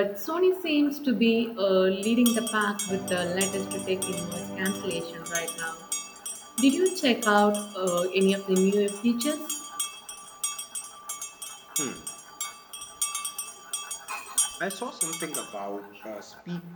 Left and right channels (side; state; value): both; identical; correlation 1.00